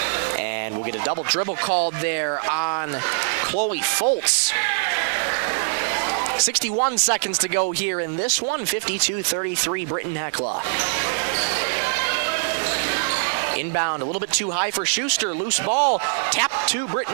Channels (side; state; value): left; silent; 61 dB below the other